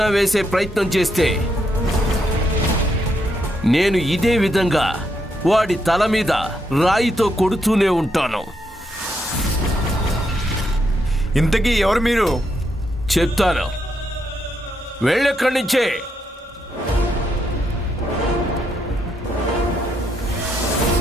వేసే ప్రయత్నం చేస్తే నేను ఇదే విధంగా వాడి తల మీద రాయితో కొడుతూనే ఉంటాను. ఇంతకీ ఎవరు మీరు? చెప్తాను, వెళ్ళెక్కడి నుంచే.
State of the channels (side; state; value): both; normal; correlation 0.79